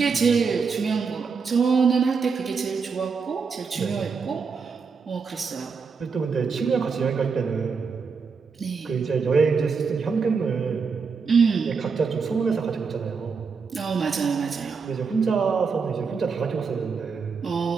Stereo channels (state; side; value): quieter; left; 5.3 dB